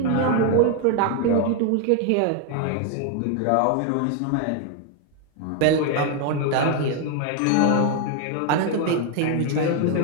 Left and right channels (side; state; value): both; different; correlation 0.01